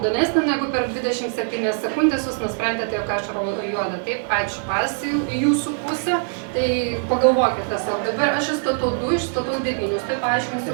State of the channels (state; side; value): silent; left; 64 dB below the other